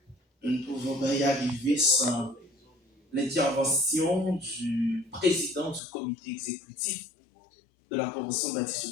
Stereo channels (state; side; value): drops out; right; at 5.8 s